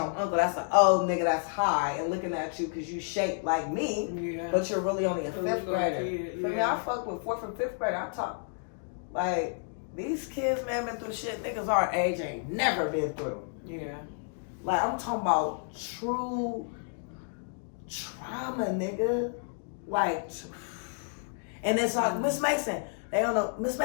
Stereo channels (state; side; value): silent; right; 57 dB below the other